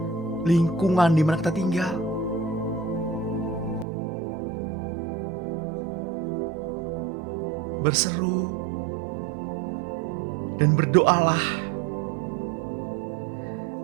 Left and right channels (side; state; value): left; drops out; at 3.9 s